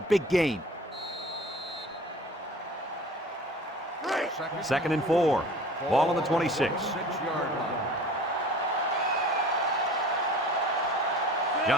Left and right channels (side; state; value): both; normal; correlation 0.43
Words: gain. 2nd and 4. Ball on the 26. 6-yard line.